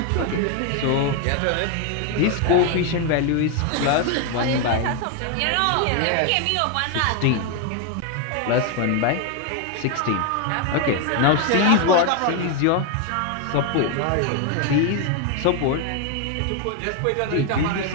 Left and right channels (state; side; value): different; both; correlation 0.01